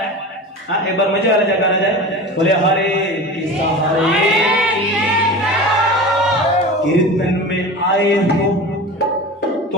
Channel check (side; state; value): both; normal; correlation 0.32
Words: हाँ एक बार मजे वाला जयकारा जाए, बोले हरे कृष्णा हरे। कीर्तन में आए हो